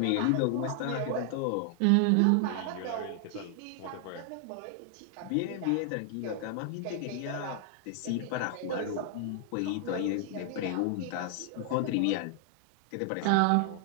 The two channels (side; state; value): both; different; correlation 0.00